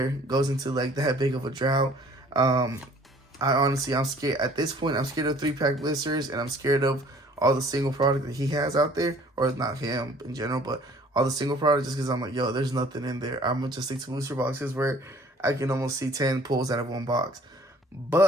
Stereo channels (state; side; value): normal; both; correlation 0.54